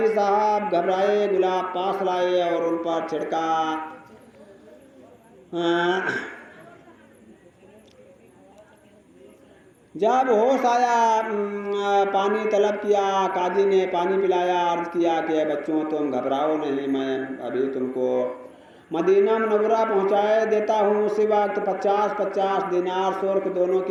साहब घबराए, गुलाब पास लाए और उन पर छिड़का। जब होश आया, पानी तलब किया, काजी ने पानी पिलाया, अर्ज किया कि बच्चों तुम घबराओ नहीं, मैं अभी तुमको मदीना मुनव्वरा पहुंचाए देता हूँ। उसी वक्त 50-50 दिनार सुर्ख दोनों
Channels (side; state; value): both; identical; correlation 1.00